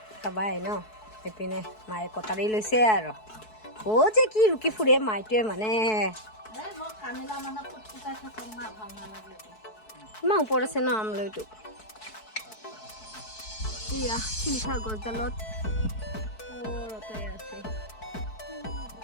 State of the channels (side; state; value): right; late; 4.6 ms